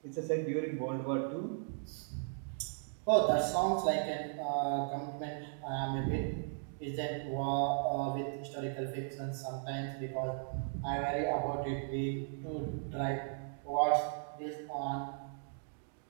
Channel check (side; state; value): left; silent; digital silence